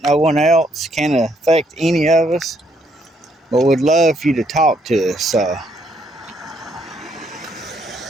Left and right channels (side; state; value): both; normal; correlation 0.71